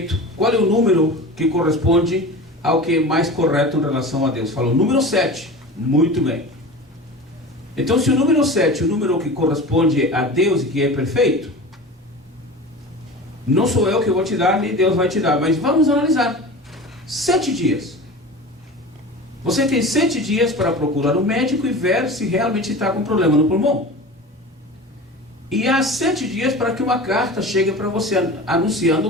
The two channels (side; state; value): both; normal; correlation 0.34